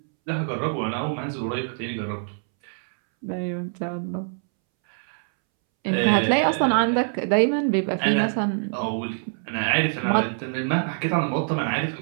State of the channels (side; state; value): left; silent; 62 dB below the other